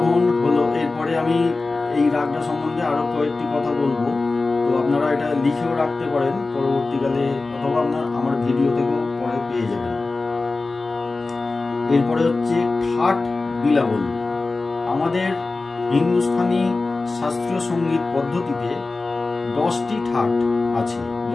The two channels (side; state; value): right; quieter; 3.6 dB